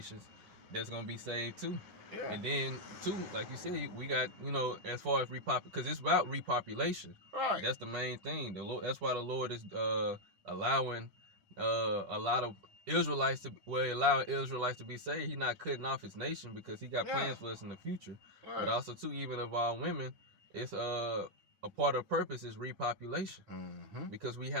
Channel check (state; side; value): late; left; 10 ms